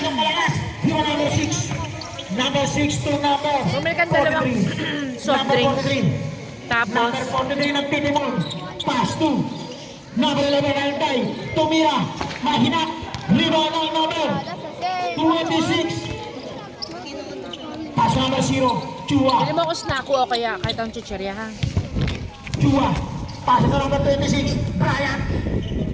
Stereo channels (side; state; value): both; identical; correlation 1.00